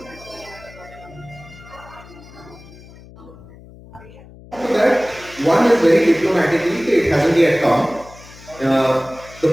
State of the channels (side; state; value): left; noise; hum, 20 dB below the sound